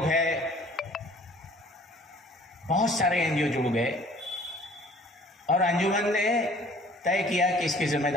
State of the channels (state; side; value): normal; both; correlation 0.53